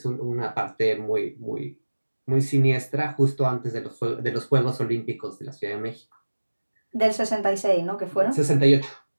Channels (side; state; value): both; inverted; correlation -1.00